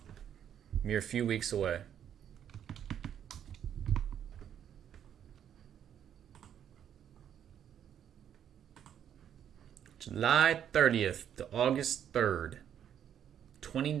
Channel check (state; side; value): quieter; left; 9.4 dB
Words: mere few weeks away. July 30th to August 3rd.